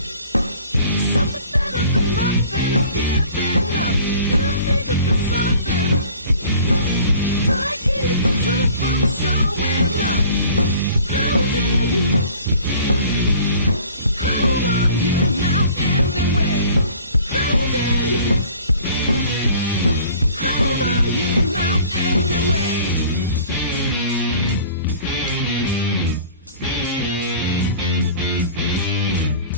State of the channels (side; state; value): both; inverted; correlation -0.48